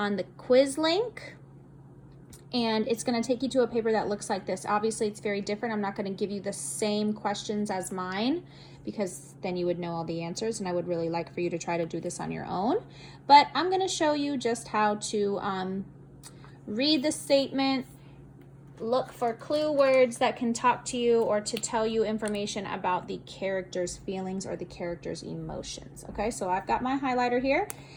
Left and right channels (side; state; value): both; identical; correlation 1.00